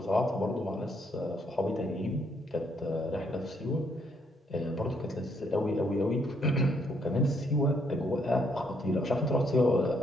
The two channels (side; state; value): both; normal; correlation 0.72